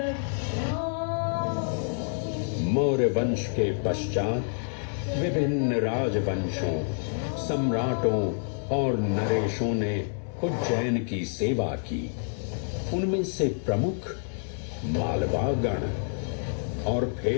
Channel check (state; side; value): silent; right; 59 dB below the other